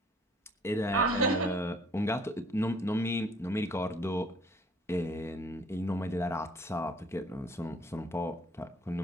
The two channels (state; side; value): normal; both; correlation 0.57